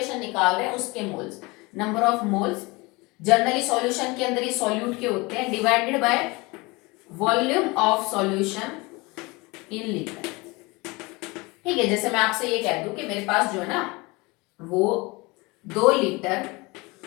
निकाल रहे हैं उसके moles, number of moles generally solution के अंदर ही सॉल्यूट के होते हैं, divided by volume of solution in litre. ठीक है, जैसे मैं आपसे ये कह दूं कि मेरे पास जो है ना वो 2 लीटर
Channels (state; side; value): quieter; right; 24.8 dB